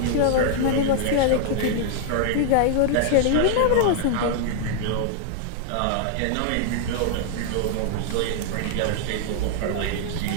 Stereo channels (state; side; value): different; both; correlation -0.01